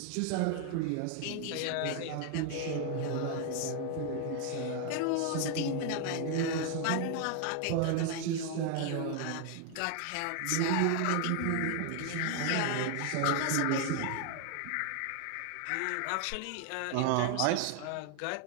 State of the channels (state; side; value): different; both; correlation 0.01